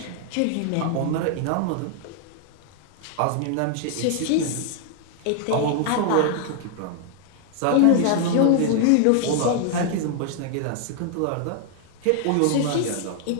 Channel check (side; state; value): both; different; correlation 0.00